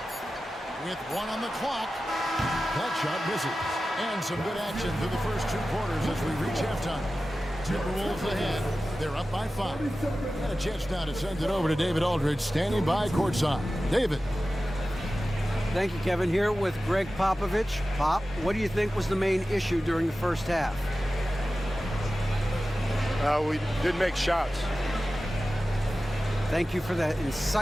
With 1 on the clock. That shot misses. And some good action through the first 2 quarters as we reach halftime. Timberwolves ahead. They're up by 5. Got a chance now to send it over to David Aldridge, standing by courtside. David. Thank you, Kevin. Here with Greg Popovich. Pop, what do you think was the main issue during the first half? We didn't make shots. Thank you for that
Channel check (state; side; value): normal; both; correlation 0.95